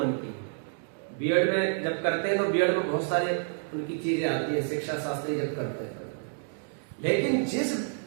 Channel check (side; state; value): left; silent; digital silence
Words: की। बीएड में जब करते हैं तो बीएड में बहुत सारे उनकी चीजें आती है, शिक्षा शास्त्री जब करते हैं। लेकिन जिस